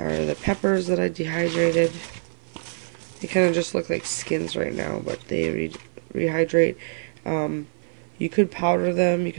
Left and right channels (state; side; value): silent; left; 57 dB below the other